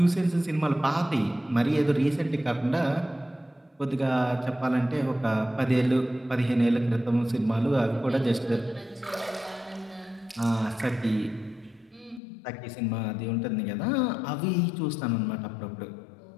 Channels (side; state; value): right; drops out; at 12.2 s